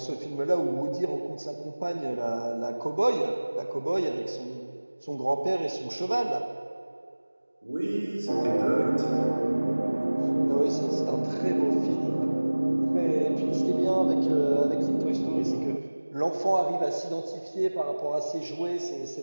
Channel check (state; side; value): inverted; both; correlation -1.00